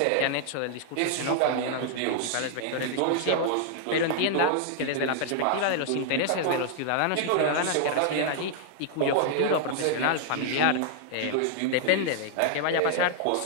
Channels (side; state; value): both; different; correlation -0.01